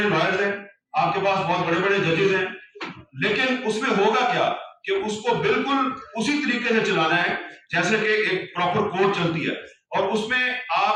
لائرز ہیں، آپ کے پاس بہت بڑے بڑے ججز ہیں، لیکن اس میں ہوگا کیا کہ اس کو بالکل اسی طریقے سے چلانا ہے جیسے کہ ایک پراپر کورٹ چلتی ہے، اور اس میں آپ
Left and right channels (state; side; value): identical; both; correlation 1.00